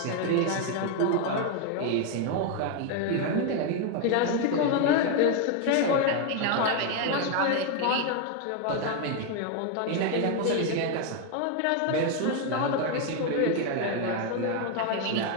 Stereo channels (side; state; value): both; different; correlation 0.01